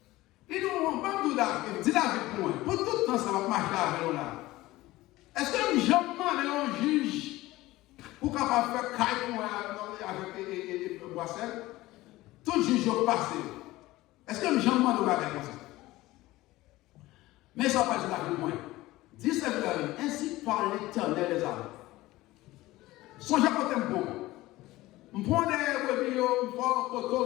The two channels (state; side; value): quieter; right; 18.1 dB